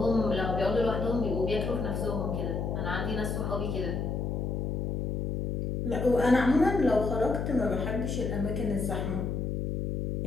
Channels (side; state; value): left; noise; hum, 1 dB below the sound